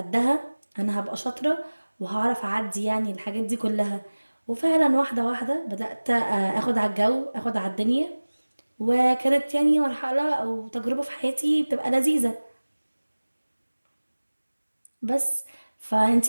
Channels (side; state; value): both; inverted; correlation -1.00